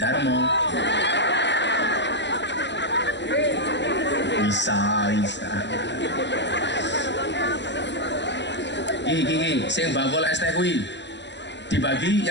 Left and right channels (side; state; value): right; late; 0.52 ms